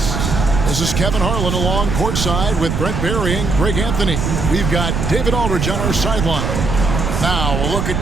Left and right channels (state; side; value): noise; right; rumble, 2 dB below the sound